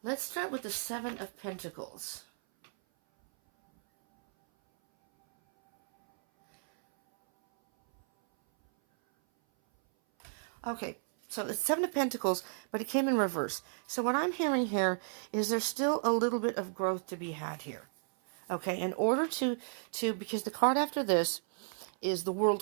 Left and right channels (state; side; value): silent; left; 56 dB below the other